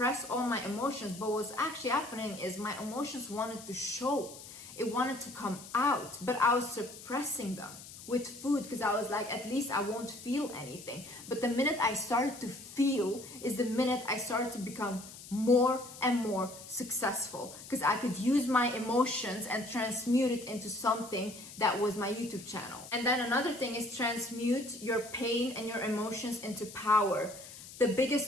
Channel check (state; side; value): noise; left; hiss, 15 dB below the sound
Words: all my emotions. But what's actually happening is my emotions wanted to show. It wanted to come out, but I was suppressing them with food because I was like, at least I won't feel anything. But the minute I started to feel is the minute I started to become more and more successful, because I could use my emotions and transmute it into something that was my YouTube channel. And then another thing is transmute your pain and your emotions into power. The